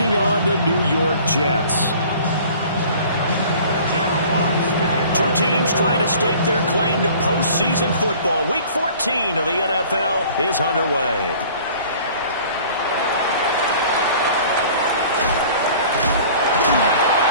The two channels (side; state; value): both; inverted; correlation -0.48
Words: on the New York Jets. Two teams trying to stake their claim to postseason football. Week 14 of the NFL is underway.